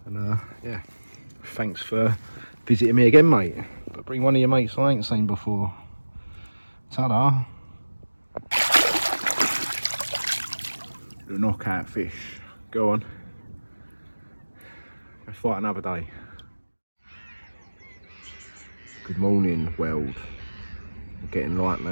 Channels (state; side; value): inverted; both; correlation -1.00